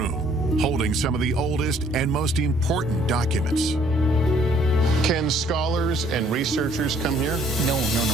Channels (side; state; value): both; normal; correlation 0.62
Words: holding some of the oldest and most important documents. Can scholars and researchers come here? No.